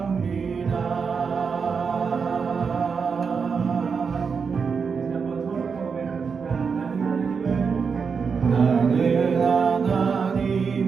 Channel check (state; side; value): quieter; left; 5.7 dB